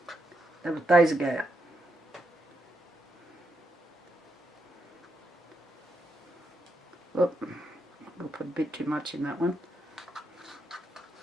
That was days ago. Whoop, I'll put a bit too much in that one.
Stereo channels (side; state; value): both; normal; correlation 0.81